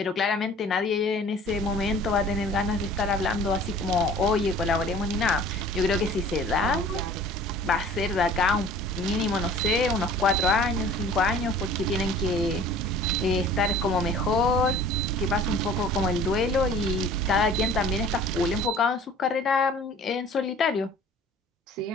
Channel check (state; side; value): normal; both; correlation 0.47